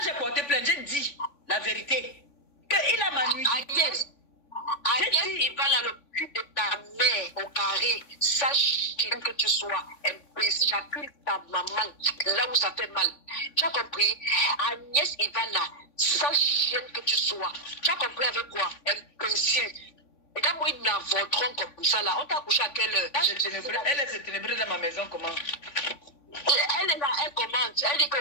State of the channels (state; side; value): late; right; 3.5 ms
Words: j'ai porté plainte, j'ai dit la vérité. Qu'il a ma nuit. Agnès, il va dans le cul de ta mère au carré. Sache que tu sois imbécile. J'accuse ta maman là où ça fait mal. Tu as compris? Agnès Ivana, sache que tu sois. Tu as compris avec quoi? Imbécile. Et quand moi, ils n'avorteront comme ça là, on t'a couché à quelle heure? Elle est ténébreuse dans ma maison, comment? Elle est là, elle commente. Elle dit que